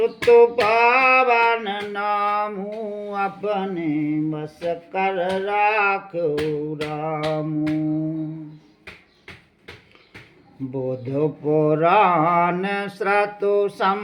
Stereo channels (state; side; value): identical; both; correlation 1.00